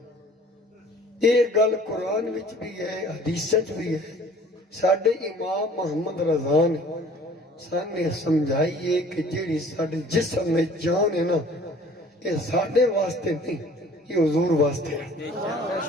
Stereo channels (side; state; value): both; normal; correlation 0.50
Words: یہ گل قرآن وچ بھی ہے حدیث وچ بھی ہے ساڈے امام محمد رضا نے سانے سمجھائی ہے کہ جیڑی ساڈے جسم میں جان ہے نا یہ ساڈے واسطے نہیں یہ حضور واسطے ہے